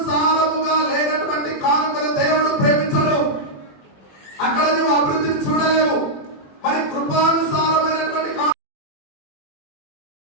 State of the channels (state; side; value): late; right; 21 ms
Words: లేనటువంటి కానుకను దేవుడు ప్రేమించడు. అక్కడ నువ్వు అభివృద్ధిని చూడలేవు. మరి కృపానుసారమైనటువంటి